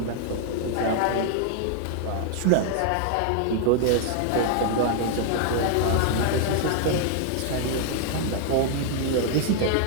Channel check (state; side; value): different; both; correlation 0.00